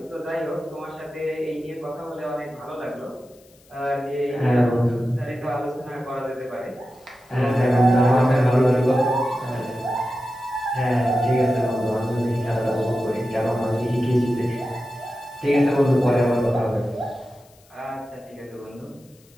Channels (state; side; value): noise; left; hiss, 30 dB below the sound